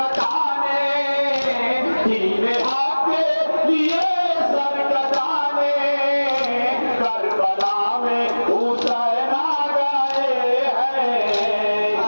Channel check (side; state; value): both; inverted; correlation -1.00